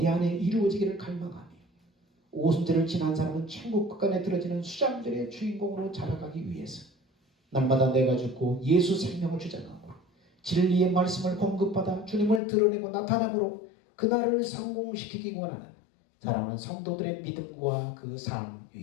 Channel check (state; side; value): drops out; right; at 12.4 s